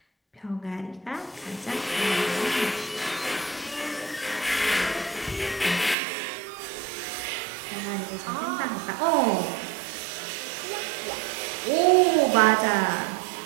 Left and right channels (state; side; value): drops out; left; at 6.0 s